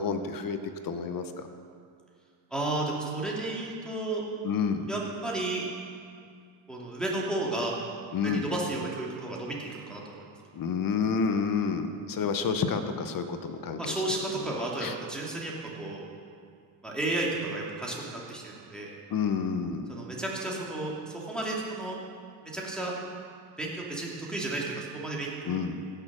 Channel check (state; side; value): normal; both; correlation 0.26